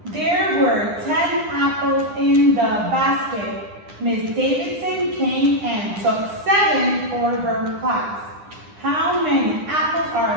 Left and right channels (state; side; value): late; left; 9.9 ms